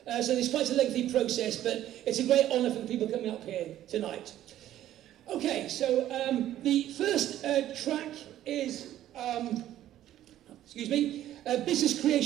so there's quite a lengthy process, but it's a great honour for the people coming up here tonight. Okay, so the first track is business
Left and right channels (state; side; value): quieter; left; 12.6 dB